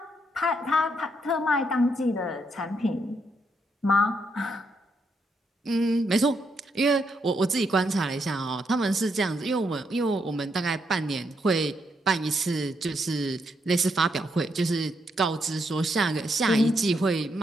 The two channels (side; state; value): both; normal; correlation 0.78